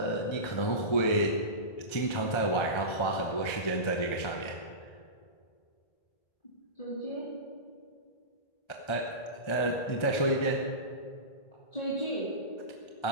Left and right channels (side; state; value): right; late; 1.3 ms